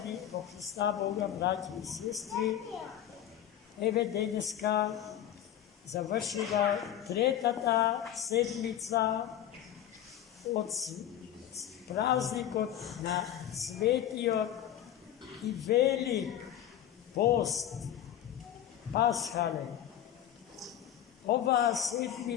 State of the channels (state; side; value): quieter; right; 10.9 dB